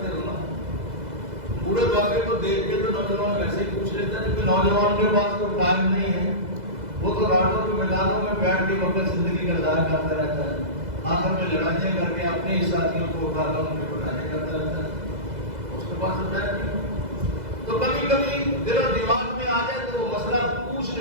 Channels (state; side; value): late; left; 2.0 ms